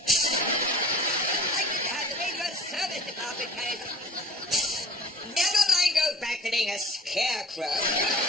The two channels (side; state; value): both; normal; correlation 0.47